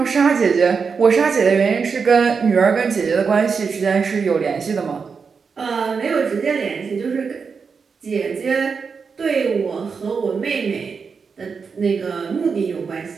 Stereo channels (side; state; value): left; quieter; 5.5 dB